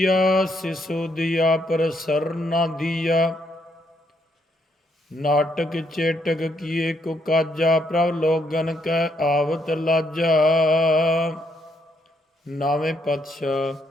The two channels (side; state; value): both; normal; correlation 0.74